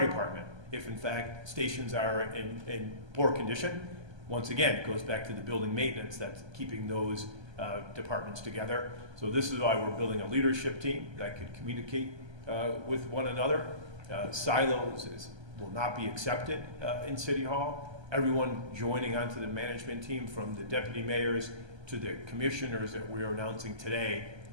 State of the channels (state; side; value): late; left; 1.3 ms